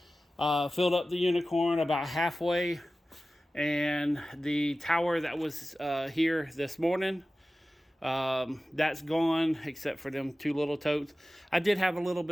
Filled up the Unicorn about halfway, and the tower that was here this morning, that's gone, except for them 2 little totes. I did have a little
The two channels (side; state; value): both; normal; correlation 0.95